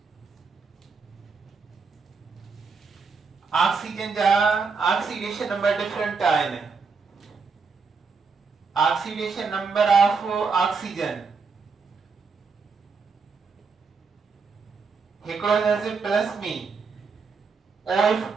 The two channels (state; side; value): quieter; left; 5.0 dB